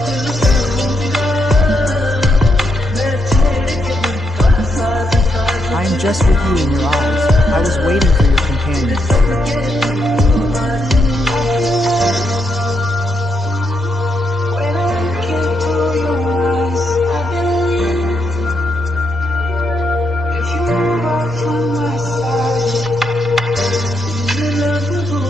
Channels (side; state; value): both; normal; correlation 0.80